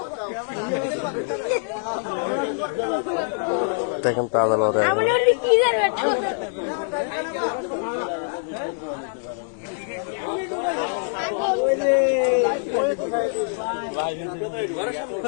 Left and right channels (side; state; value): right; silent; 60 dB below the other